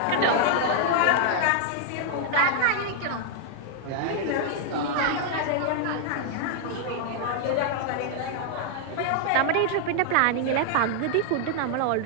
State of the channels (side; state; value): both; different; correlation 0.00